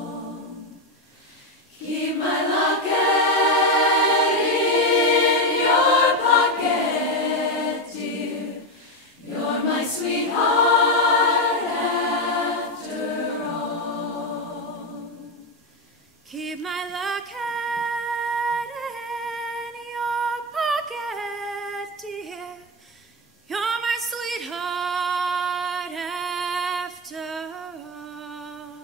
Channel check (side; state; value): both; normal; correlation 0.10